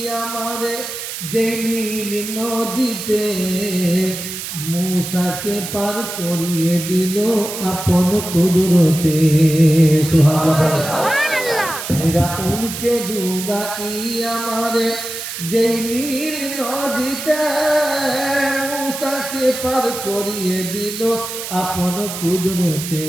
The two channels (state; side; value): noise; right; hiss, 7 dB below the sound